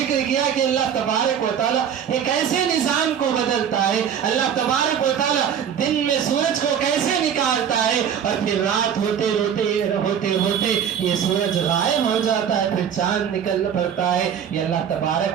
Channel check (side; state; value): left; quieter; 8.4 dB